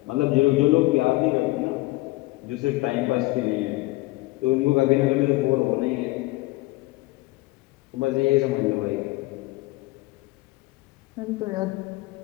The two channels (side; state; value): right; quieter; 20.7 dB